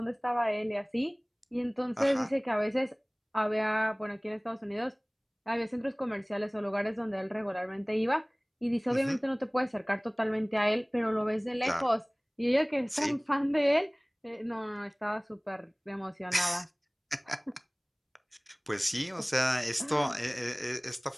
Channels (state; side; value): identical; both; correlation 1.00